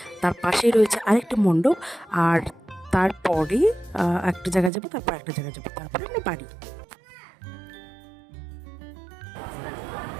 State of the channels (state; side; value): drops out; left; at 4.7 s